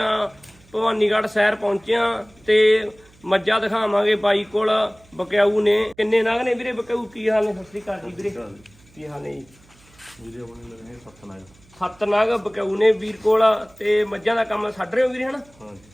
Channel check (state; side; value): noise; right; hum, 28 dB below the sound